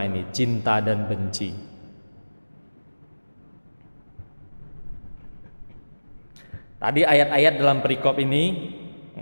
ini, cinta dan benci? Tadi ayat-ayat dalam perikop ini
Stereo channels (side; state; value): both; inverted; correlation -1.00